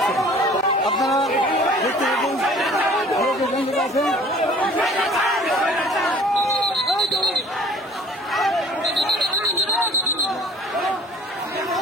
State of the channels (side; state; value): both; normal; correlation 0.50